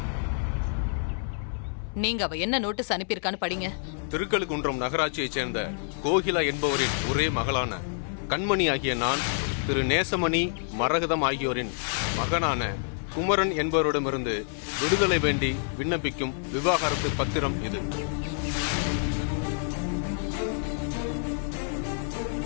நீங்க அவ என்ன நோட்டீஸ் அனுப்பியிருக்கான்னு படிங்க. திருக்கழுக்குன்றம் நகராட்சியைச் சேர்ந்த கோகிலா என்பவரின் ஒரே மகளான கண்மணி ஆகிய நான் திரு நேசமணி, மரகதம் ஆகியோரின் மகனான குமரன் என்பவரிடமிருந்து விடுதலை வேண்டி விண்ணப்பிக்கும் விவாகரத்து பத்திரம் இது.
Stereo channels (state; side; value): silent; right; 59 dB below the other